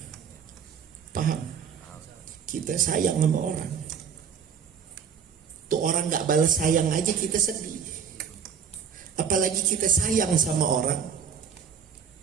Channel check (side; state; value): left; quieter; 7.2 dB